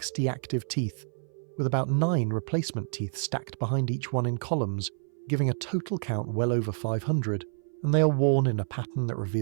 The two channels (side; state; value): left; silent; 58 dB below the other